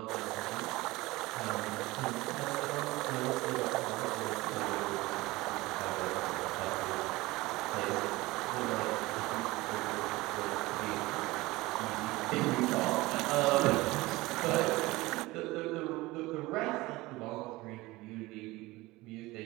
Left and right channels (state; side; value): quieter; left; 20.3 dB